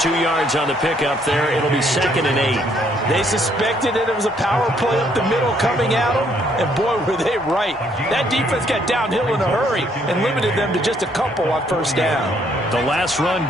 yards on the pickup there. It'll be 2nd and 8. They suspected that it was a power play up the middle coming at them, and boy, were they right. That defense got downhill in a hurry and limited them to just a couple on first down. The last run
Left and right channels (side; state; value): both; normal; correlation 0.68